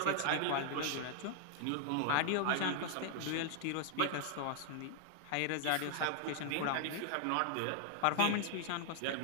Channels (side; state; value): both; different; correlation 0.00